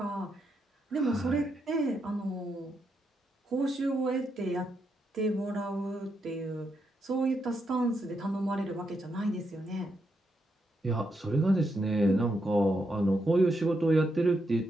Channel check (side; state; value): both; normal; correlation 0.81